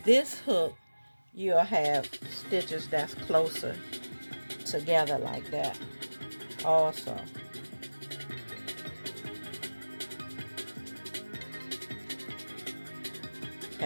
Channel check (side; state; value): both; inverted; correlation -1.00